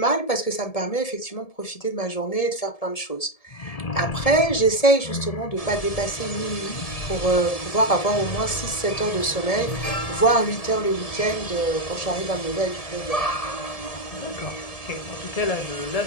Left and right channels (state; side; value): late; right; 1.7 ms